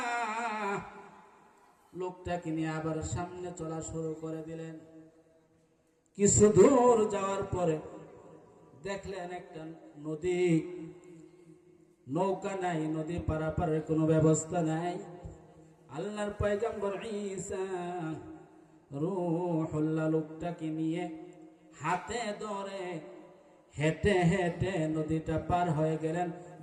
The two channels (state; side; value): identical; both; correlation 1.00